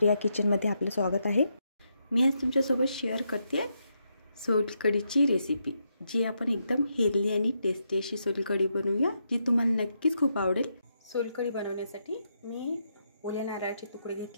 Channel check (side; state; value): both; inverted; correlation -0.81